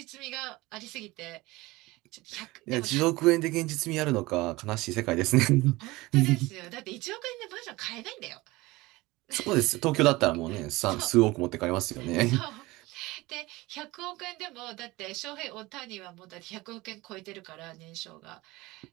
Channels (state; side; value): quieter; left; 20.7 dB